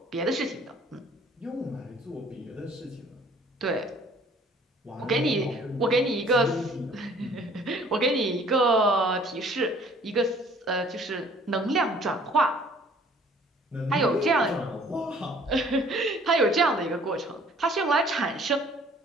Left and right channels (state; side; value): normal; both; correlation 0.55